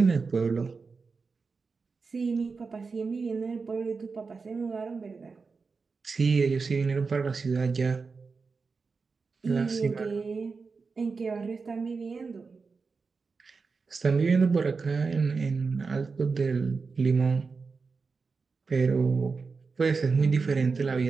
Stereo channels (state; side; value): quieter; left; 4.7 dB